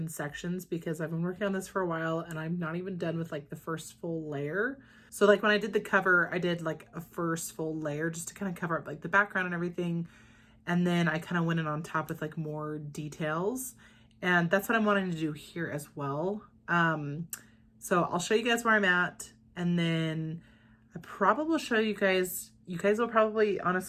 sections, because I've been working on this for a while and I'm not even done with like the first full layer. So like when I did the cover, I did like a first full layer just to kind of cover up like the background and everything. And then I kind of went in on top with like more details, and that's what I'm wanting to do here as well. So I'll show you guys where I'm at, and then I probably will show you guys will probably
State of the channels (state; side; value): identical; both; correlation 1.00